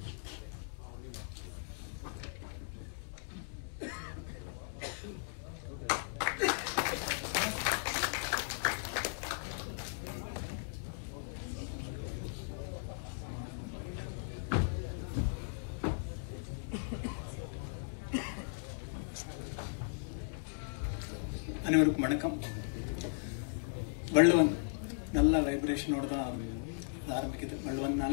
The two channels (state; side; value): silent; right; digital silence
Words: அனைவருக்கும் வணக்கம். வள்ளுவன் நல்ல வைப்ரேஷனோட தான் ஆரம்பிக்குது.